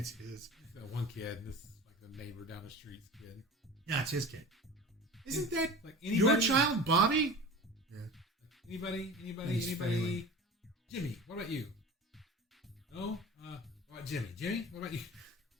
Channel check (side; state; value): both; normal; correlation 0.36